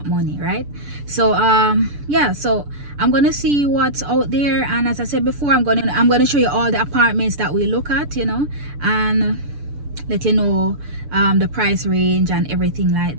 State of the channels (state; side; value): late; left; 6.9 ms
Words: money, right? So yeah, so I'm gonna see what's out there, and as I said before, I'm gonna show you all the apartments that we look at, you know, and let you know the price range and everything like